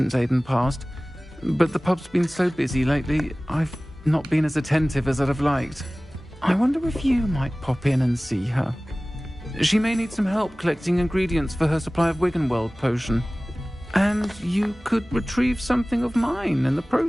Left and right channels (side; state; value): both; normal; correlation 0.98